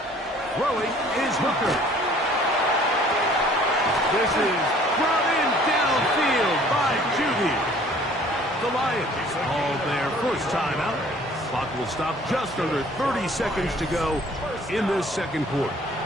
Throwing is Hooker. This is brought in downfield by Judy. The Lions all their first timeout. Clock will stop just under 30 seconds to go in this second quarter.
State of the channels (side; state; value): both; normal; correlation 0.54